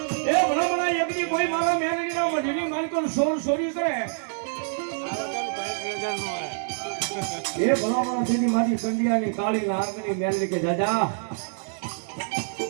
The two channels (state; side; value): silent; left; digital silence